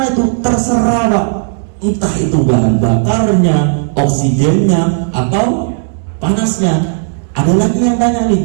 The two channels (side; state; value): left; silent; digital silence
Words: itu terserah Pak. Entah itu bahan bakarnya, oksigennya, atau panasnya. Ada lagi yang tanya